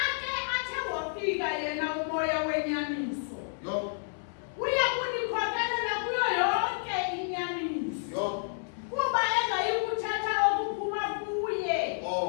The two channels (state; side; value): silent; right; 58 dB below the other